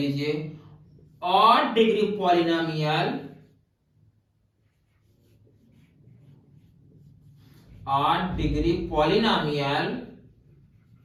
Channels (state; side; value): identical; both; correlation 1.00